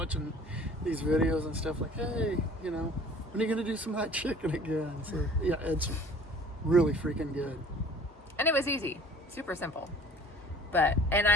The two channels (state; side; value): normal; both; correlation 0.49